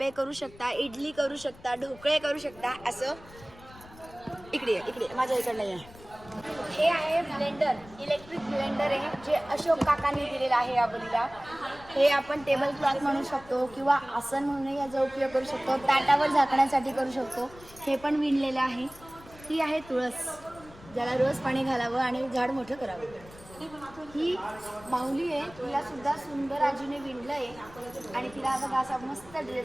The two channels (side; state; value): left; noise; rumble, 21 dB below the sound